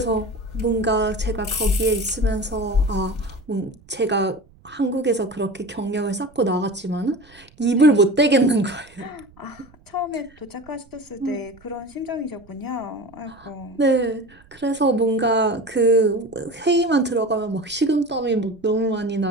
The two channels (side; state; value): right; noise; rumble, 27 dB below the sound